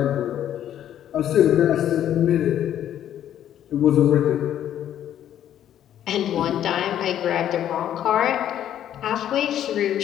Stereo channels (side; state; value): right; quieter; 10.9 dB